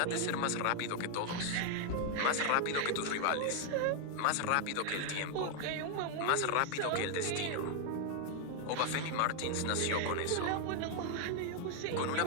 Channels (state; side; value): different; both; correlation 0.00